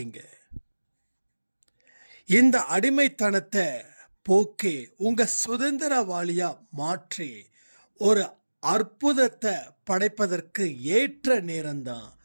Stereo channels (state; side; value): inverted; both; correlation -1.00